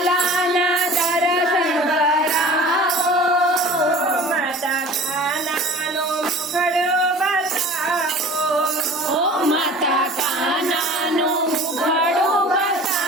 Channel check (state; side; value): normal; both; correlation 0.43